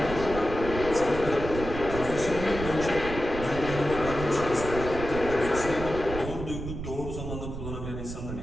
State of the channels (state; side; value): noise; right; rumble, 7 dB below the sound